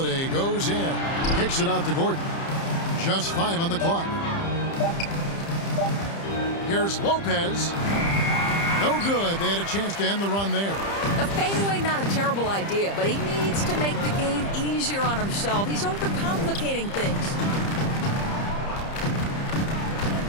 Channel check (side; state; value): right; late; 30 ms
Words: goes in. Kicks it out to Gordon. Just 5 on the clock. Here's Lopez. No good. They had a chance to end the run there. The fadeaway, not a terrible idea, but he needs to make the game easier on himself. He's overcomplicating things.